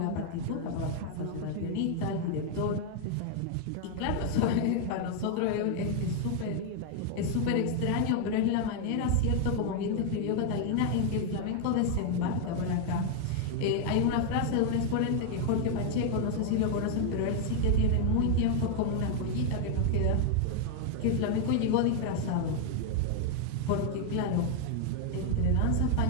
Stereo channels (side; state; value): both; different; correlation 0.00